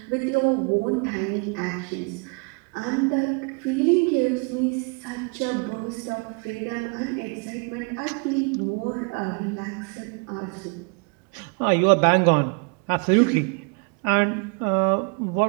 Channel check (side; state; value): left; quieter; 34.3 dB